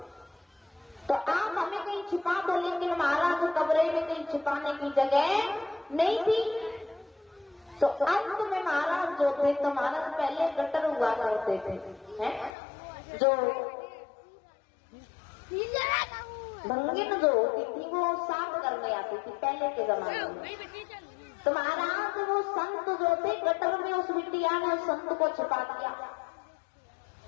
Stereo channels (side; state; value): right; drops out; at 12.5 s